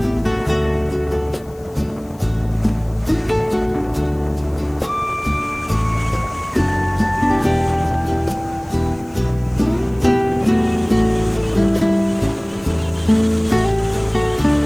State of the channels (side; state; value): left; noise; hiss, 28 dB below the sound